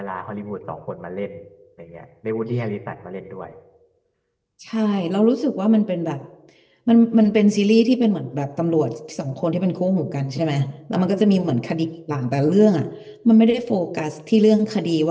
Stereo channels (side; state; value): both; identical; correlation 1.00